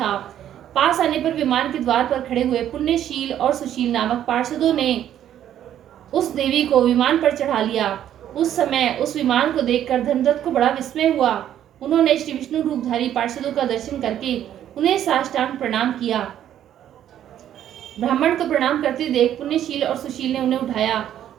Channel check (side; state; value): left; quieter; 10.9 dB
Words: पास आने पर विमान के द्वार पर खड़े हुए पुण्यशील और सुशील नामक पार्षदों ने उस देवी को विमान पर चढ़ा लिया। उस समय उस विमान को देखकर धर्मदत्त को बड़ा विस्मय हुआ। उन्होंने श्री विष्णु रूपधारी पार्षदों का दर्शन करके उन्हें साष्टांग प्रणाम किया। ब्राह्मण को प्रणाम करते देख पुण्यशील और सुशील ने उन्हें उठाया